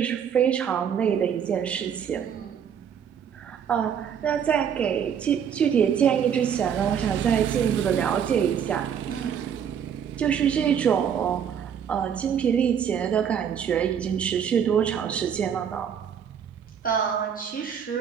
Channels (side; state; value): left; quieter; 8.1 dB